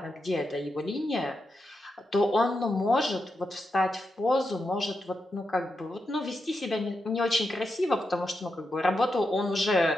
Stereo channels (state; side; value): normal; both; correlation 0.86